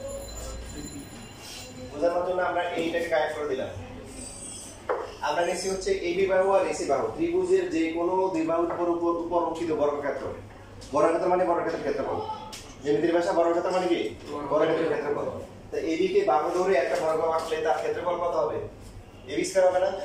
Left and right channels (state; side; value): identical; both; correlation 1.00